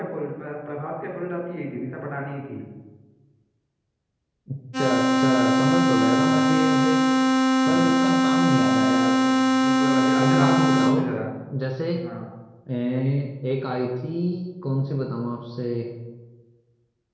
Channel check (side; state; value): both; identical; correlation 1.00